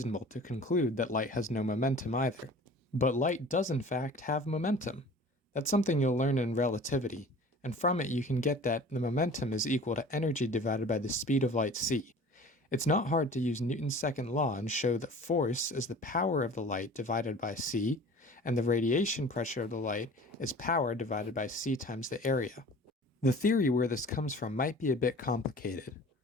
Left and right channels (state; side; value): normal; both; correlation 0.43